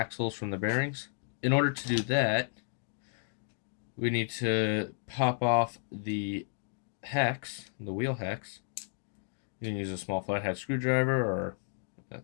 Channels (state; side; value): silent; right; digital silence